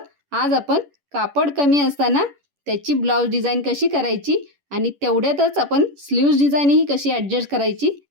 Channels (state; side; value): late; left; 11 ms